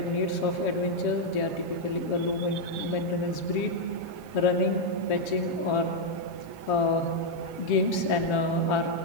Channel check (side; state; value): right; late; 7.2 ms